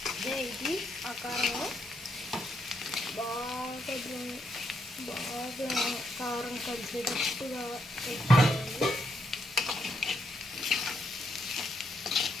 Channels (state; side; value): normal; both; correlation 0.77